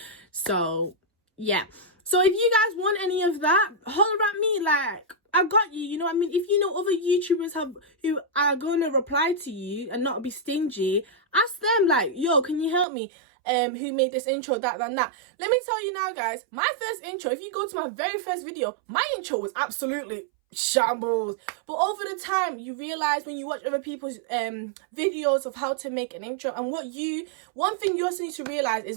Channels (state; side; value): drops out; left; at 12.9 s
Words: So yeah, so if you guys want any of that, holler at me. Like, I got you, you know what I mean? If you know other YouTubers who are going to reply to you and not be stingy, ask them, like, yo, can you help me? Who made this intro, that and that. Let me tell you now guys, my first intro, if you go to my very first video, my intro was absolutely shambles. But over the time, you realize when you watch other people's videos of how to make an intro, and one thing you also need to realize